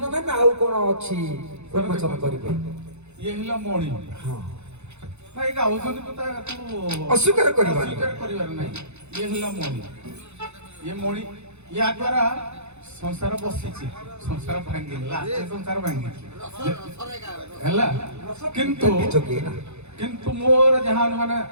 ନା ନା ଆଉ କଣ ଅଛି ଉନ୍ମୋଚନ କରିବେ ଇଏ ହେଲା ମଣି ହଁ ଭାଇ ଗାଉଛନ୍ତି କଥା ତାକୁ ଅସ୍ୱୀକାର କରିବାନି। ଅସ୍ୱୀକାର କରିବାର ନାହିଁ ଇଏ ହେଲା ମଣି ଇଏ ମଣି ୟା ଦ୍ୱାରା ସଂସାର ବସିଛି ସଂସାର ଭାଙ୍ଗିନି ଲାଷ୍ଟ ସଂସାର ଭାଙ୍ଗିଛି ହେଲା କିନ୍ତୁ ଯୋଗୀ ନା କିନ୍ତୁ ମୋର ଯାହା ମାନେ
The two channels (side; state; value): left; late; 0.81 ms